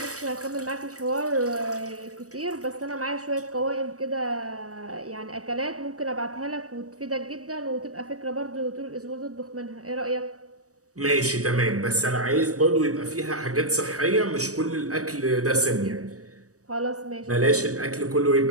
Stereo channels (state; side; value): late; left; 0.66 ms